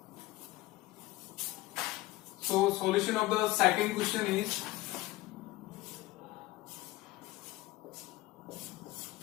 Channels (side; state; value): right; quieter; 18.5 dB